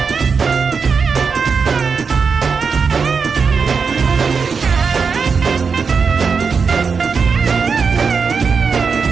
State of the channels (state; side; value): quieter; left; 5.5 dB